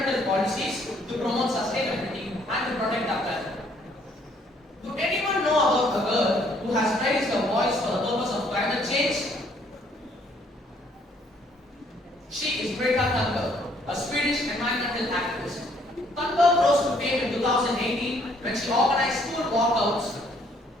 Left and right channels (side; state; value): both; normal; correlation 0.65